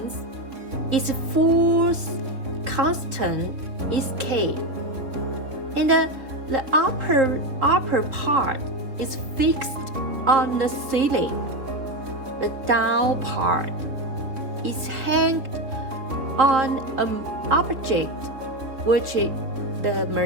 its force constant is K, and the upper part is fixed on the ceiling. The down part is hanged on an object which the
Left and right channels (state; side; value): late; left; 3.6 ms